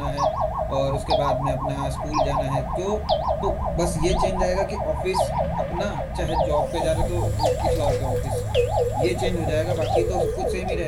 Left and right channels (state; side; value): identical; both; correlation 1.00